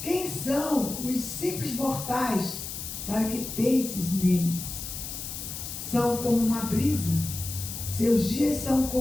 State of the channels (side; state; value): left; noise; hiss, 7 dB below the sound